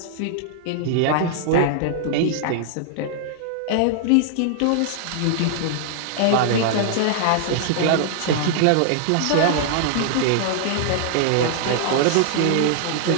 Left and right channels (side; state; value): both; different; correlation -0.01